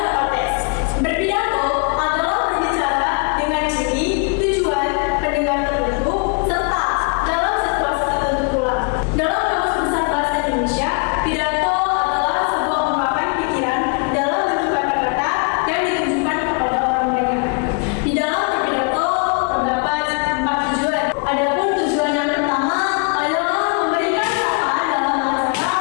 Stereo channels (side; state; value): right; quieter; 36.5 dB